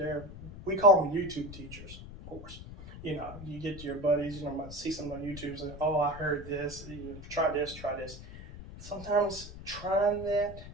we call them YouTube teachers, of course. You get your buddies, might see something on YouTube and, oh, I heard this, try this. Sometimes trying that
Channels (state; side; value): noise; left; rumble, 13 dB below the sound